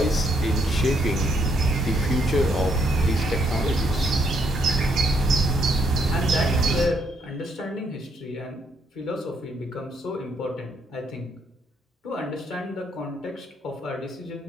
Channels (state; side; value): normal; both; correlation 0.72